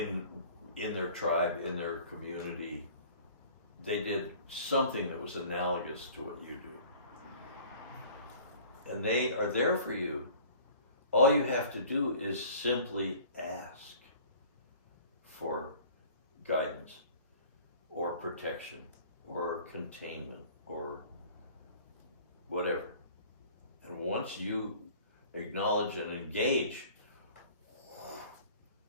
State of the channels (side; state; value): both; inverted; correlation -0.48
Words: in their tribe, in their community. They did something that was analogous to what you do. And they are there for you. All you have to do is simply ask for guidance or protection or containment or whatever. And once you acknowledge and engage,